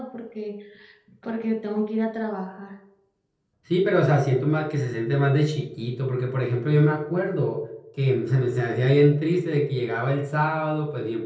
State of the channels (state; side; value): identical; both; correlation 1.00